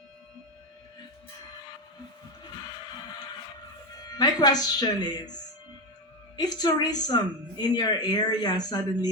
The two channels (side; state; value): both; normal; correlation 0.14